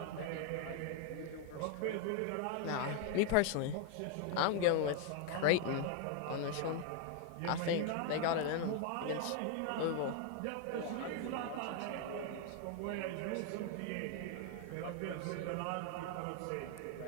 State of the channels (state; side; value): different; both; correlation 0.00